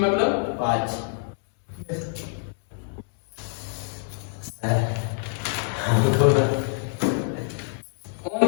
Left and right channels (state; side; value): silent; right; digital silence